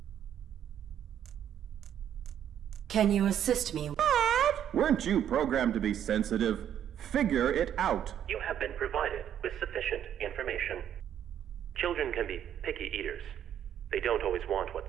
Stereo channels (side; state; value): left; quieter; 9.9 dB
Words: Can you assist me? Weren't you programmed to be sensitive? Figure it out. You have been provided with sufficient information. Children can be picky eaters. They don't always want